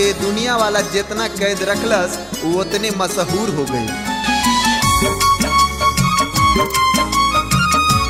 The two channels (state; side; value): identical; both; correlation 1.00